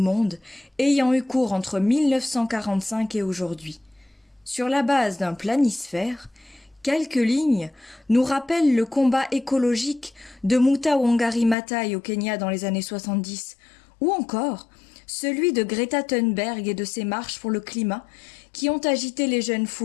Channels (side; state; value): right; drops out; at 11.6 s